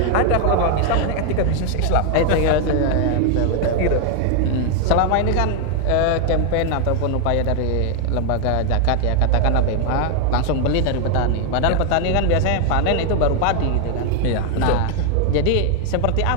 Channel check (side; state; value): both; different; correlation 0.00